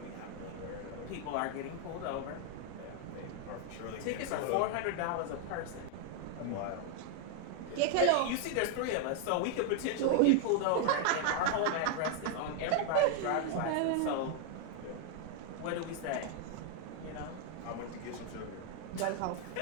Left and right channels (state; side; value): different; both; correlation 0.00